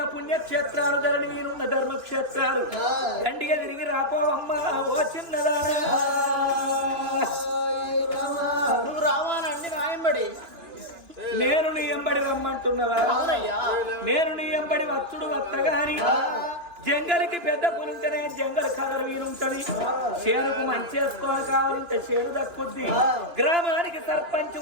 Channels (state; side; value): late; left; 2.9 ms